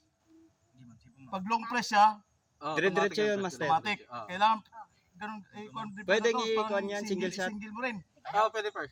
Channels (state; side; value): identical; both; correlation 1.00